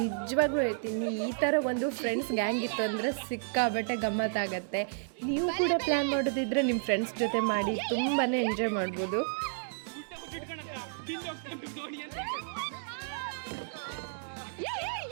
ಹೇಳ್ತೀನಿ, ಈ ಥರ ಒಂದು ಫ್ರೆಂಡ್ಸ್ ಗ್ಯಾಂಗ್ ಇತ್ತು ಅಂದರೆ ಸಿಕ್ಕಾಬಟ್ಟೆ ಗಮ್ಮತ್ತಾಗತ್ತೆ. ನೀವು ಕೂಡ ಪ್ಲ್ಯಾನ್ ಮಾಡೋದಿದ್ರೆ ನಿಮ್ಮ ಫ್ರೆಂಡ್ಸ್ ಜೊತೆ ಮಾಡಿ ತುಂಬಾ ಎಂಜಾಯ್ ಮಾಡ್ಬೋದು.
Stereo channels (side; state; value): left; silent; digital silence